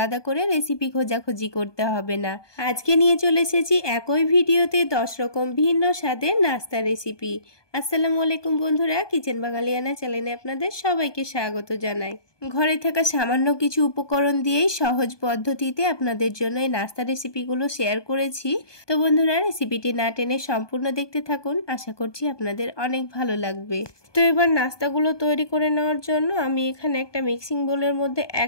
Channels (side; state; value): right; late; 1.2 ms